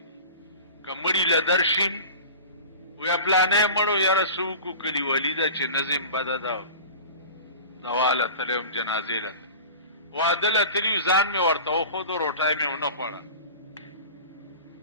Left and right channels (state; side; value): inverted; both; correlation -0.37